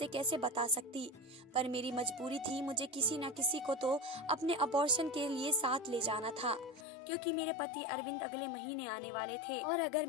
कैसे बता सकती? पर मेरी मजबूरी थी, मुझे किसी न किसी को तो अपने अबॉर्शन के लिए साथ ले जाना था, क्योंकि मेरे पति अरविंद अगले महीने आने वाले थे और अगर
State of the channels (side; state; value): right; drops out; at 6.9 s